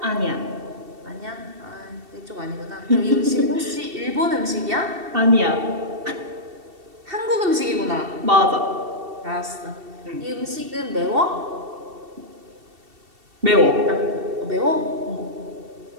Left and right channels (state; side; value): late; left; 2.7 ms